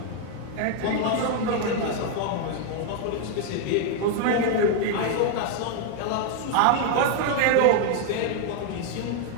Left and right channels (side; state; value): both; different; correlation 0.01